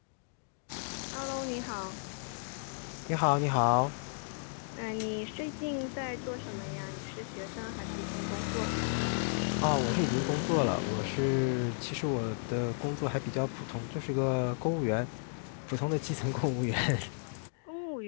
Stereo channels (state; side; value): silent; right; digital silence